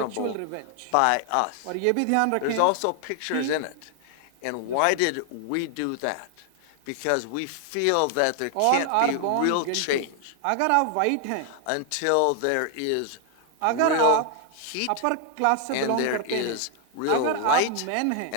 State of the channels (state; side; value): different; both; correlation 0.00